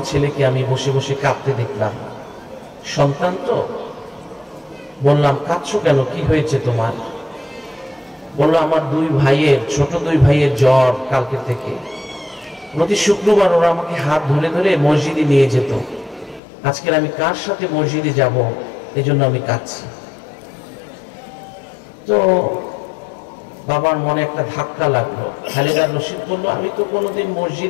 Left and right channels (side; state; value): right; drops out; at 16.4 s